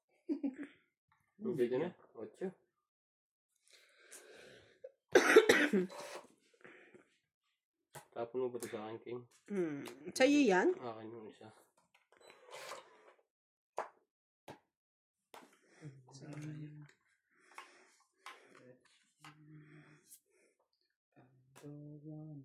Bigyan na. 8. Tapon mo ba ito sa akin, King? Sa'yo yan? Akin yung isa. Sayang.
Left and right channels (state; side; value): identical; both; correlation 1.00